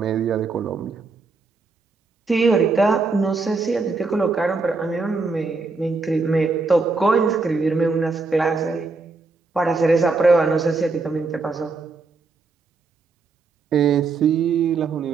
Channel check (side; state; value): left; quieter; 4.0 dB